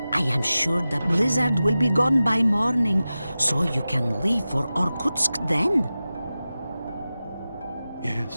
I am sure the blizzard will be gone by morning, so you can leave for Orkutsk then.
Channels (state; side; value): inverted; both; correlation -0.95